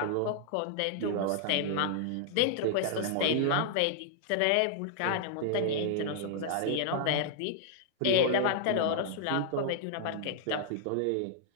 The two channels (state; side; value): different; both; correlation -0.01